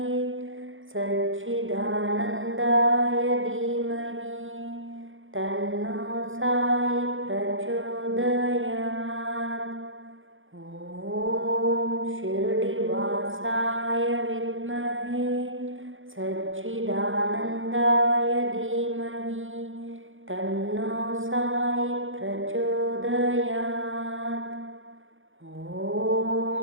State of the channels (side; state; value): left; late; 0.58 ms